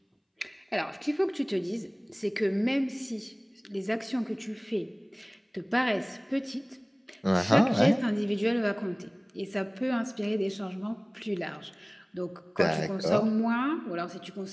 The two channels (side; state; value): both; identical; correlation 1.00